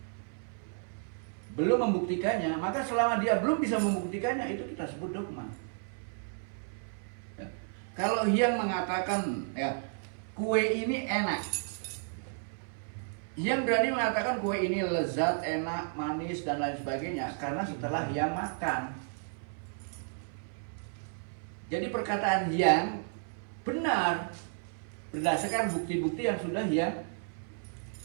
belum membuktikannya, maka selama dia belum bisa membuktikannya, itu kita sebut dogma. Ya. Kalau yang mengatakan ya kue ini enak, yang berani mengatakan kue ini lezat, enak, manis dan lain sebagainya karena setelah yang makan. Jadi perkataan yang benar berdasarkan bukti-bukti yang sudah dia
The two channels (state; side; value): silent; left; 56 dB below the other